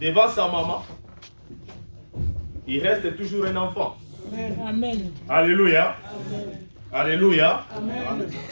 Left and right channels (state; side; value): inverted; both; correlation -1.00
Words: devant sa maman, il reste toujours un enfant. Amen. Alléluia. Amen. Alléluia. Amen.